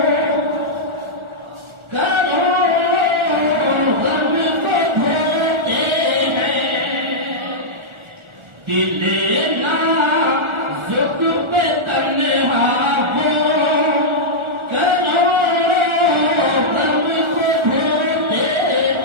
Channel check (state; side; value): late; left; 1.4 ms